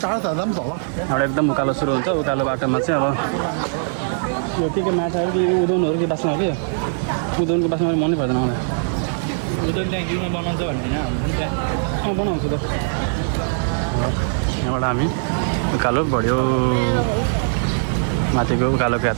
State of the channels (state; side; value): silent; left; digital silence